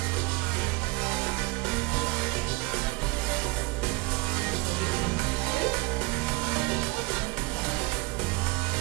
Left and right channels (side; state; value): left; quieter; 24.5 dB